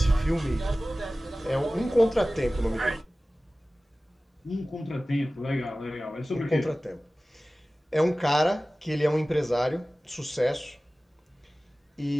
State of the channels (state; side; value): normal; both; correlation 0.97